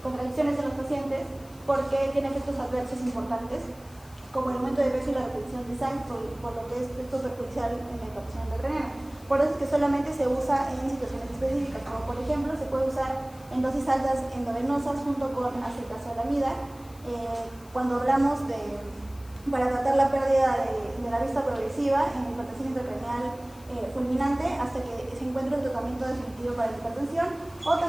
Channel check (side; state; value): left; noise; hiss, 24 dB below the sound